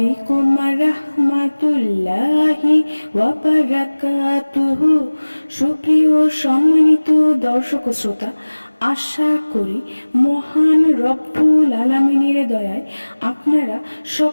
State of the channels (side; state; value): both; inverted; correlation -1.00